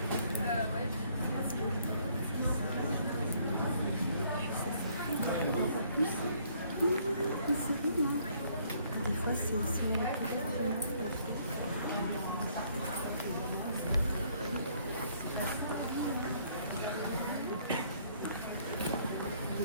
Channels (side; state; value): both; inverted; correlation -0.65